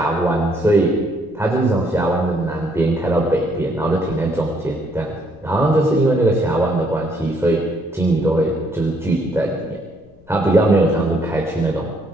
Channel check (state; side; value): noise; left; rumble, 27 dB below the sound